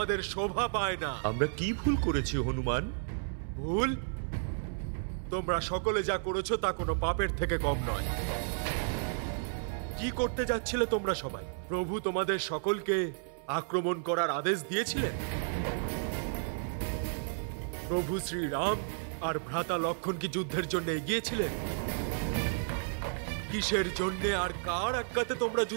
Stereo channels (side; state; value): left; silent; 56 dB below the other